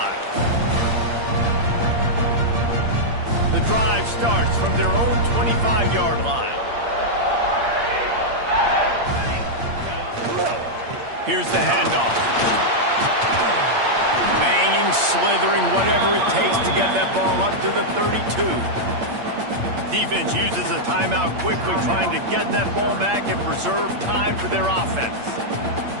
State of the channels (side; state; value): left; late; 8.7 ms